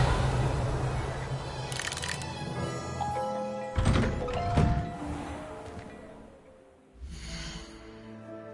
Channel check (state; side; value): identical; both; correlation 1.00